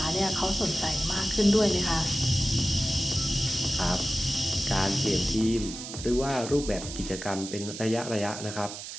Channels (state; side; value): noise; right; hiss, 10 dB below the sound